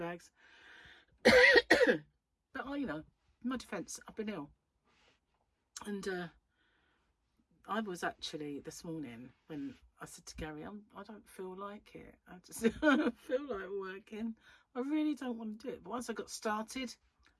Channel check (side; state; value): both; identical; correlation 1.00